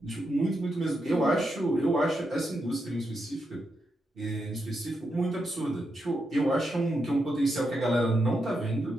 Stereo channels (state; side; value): normal; both; correlation 0.84